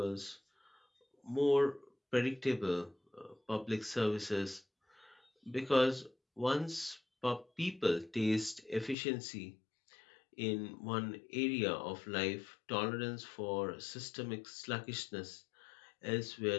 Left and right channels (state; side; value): drops out; right; at 9.0 s